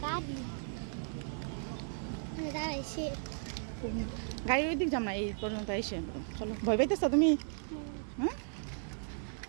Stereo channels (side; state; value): left; silent; digital silence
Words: গাড়ির ওই দিক যাম না, এই পর্যন্ত এসে। চলো, ভয় পাইতেছ তুমি? হ্যাঁ,